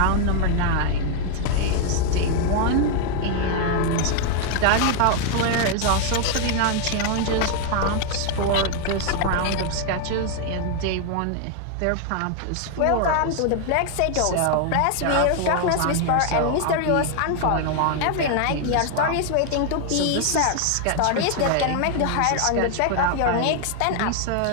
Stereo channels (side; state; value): both; different; correlation 0.00